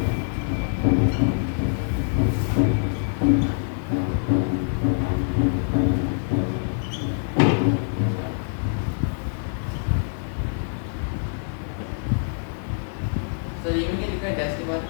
सर ई में क्या लिखा है डैश के बाद?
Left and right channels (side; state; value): right; silent; digital silence